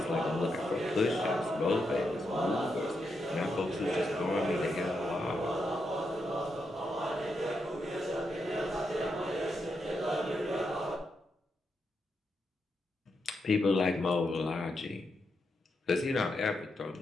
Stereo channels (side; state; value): both; normal; correlation 0.83